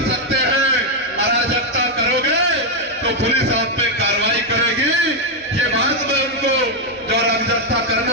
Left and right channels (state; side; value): normal; both; correlation 0.01